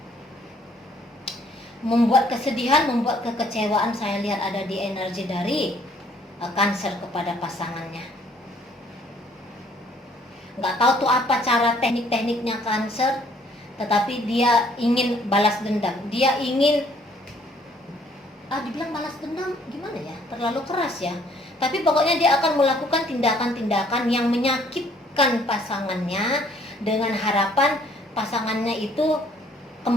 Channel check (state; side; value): normal; both; correlation 0.62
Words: Membuat kesedihan, membuat kekecewaan, saya lihat ada di energi dari Cancer kepada pasangannya. Nggak tahu tuh apa cara teknik-tekniknya Cancer, tetapi dia ingin balas dendam. Dia ingin, dibilang balas dendam gimana ya, terlalu keras ya. Tapi pokoknya dia akan melakukan tindakan-tindakan yang menyakitkan pasangannya dengan harapan pasangannya itu